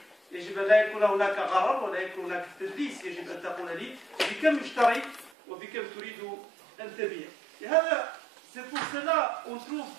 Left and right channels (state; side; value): drops out; left; at 5.3 s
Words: يجب أن لا يكون هناك غرر ولا يكون هناك تدليس يجب أن تقول لي بكم اشتريت وبكم تريد أن تبيع لهذا c'est pour cela on trouve